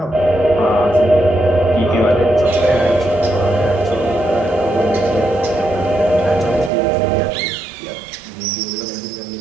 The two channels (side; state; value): left; drops out; at 6.7 s